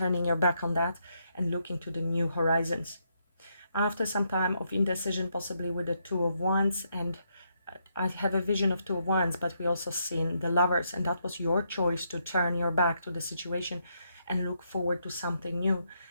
your back on that and looking to the new horizons. After some time of indecision, possibly with the Two of Wands, and I have a vision of Two of Wands, but we also seen the Lovers, and that was your choice to turn your back to the situation and look forward to something new.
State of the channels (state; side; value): inverted; both; correlation -0.78